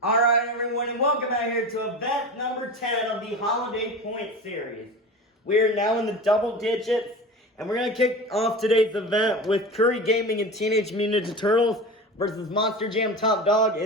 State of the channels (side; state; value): both; normal; correlation 0.30